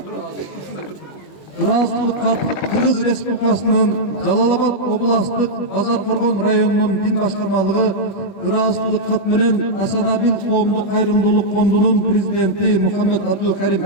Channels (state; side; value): late; right; 20 ms